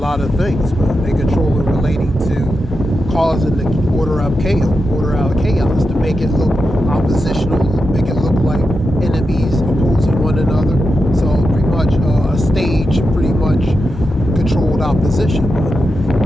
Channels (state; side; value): normal; both; correlation 0.88